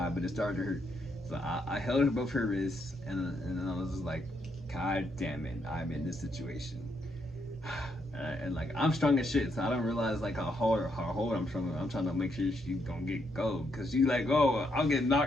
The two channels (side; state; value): both; normal; correlation 0.77